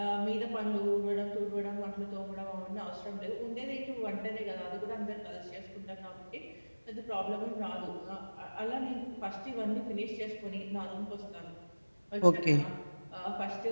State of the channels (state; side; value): inverted; both; correlation -1.00